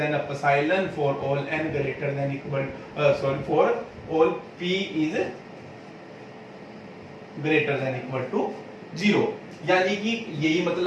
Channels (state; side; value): identical; both; correlation 1.00